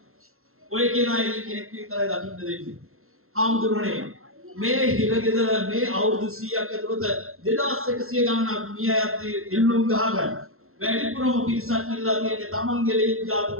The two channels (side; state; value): left; late; 0.62 ms